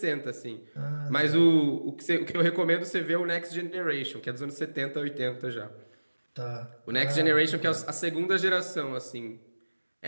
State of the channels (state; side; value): inverted; both; correlation -1.00